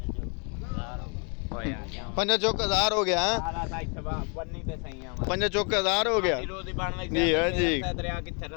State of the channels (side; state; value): right; quieter; 36.8 dB